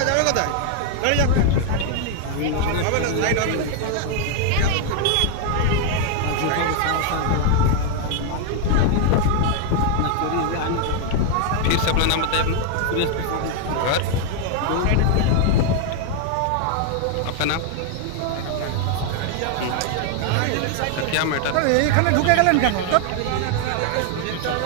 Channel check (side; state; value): both; different; correlation 0.00